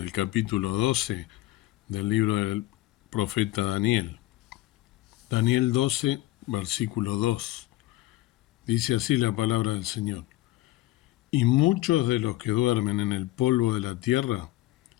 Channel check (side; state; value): right; quieter; 17.1 dB